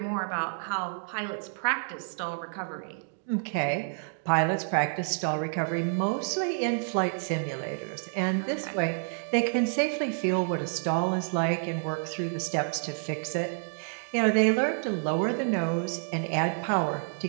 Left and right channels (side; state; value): left; silent; 59 dB below the other